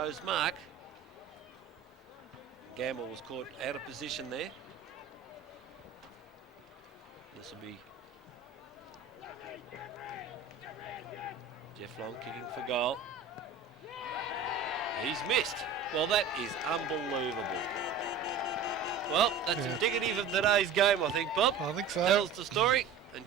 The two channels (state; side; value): quieter; left; 5.7 dB